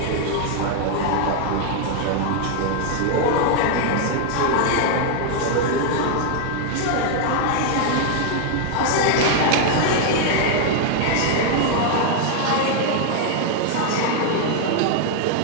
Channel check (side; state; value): both; different; correlation 0.00